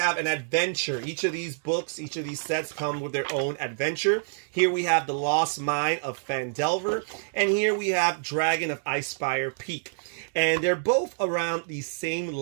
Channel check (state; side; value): silent; left; digital silence